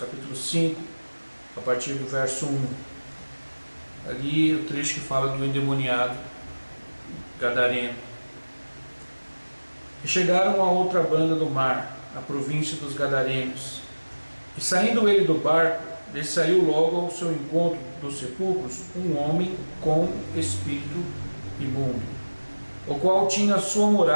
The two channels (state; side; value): inverted; both; correlation -1.00